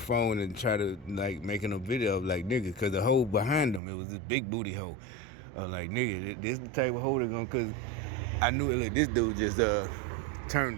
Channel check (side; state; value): left; drops out; at 3.8 s